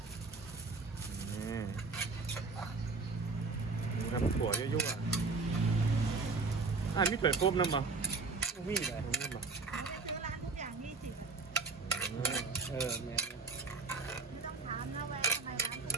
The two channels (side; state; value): left; quieter; 4.0 dB